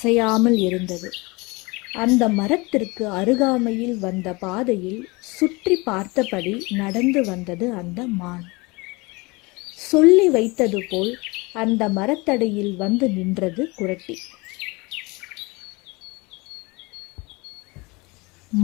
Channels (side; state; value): right; quieter; 25.5 dB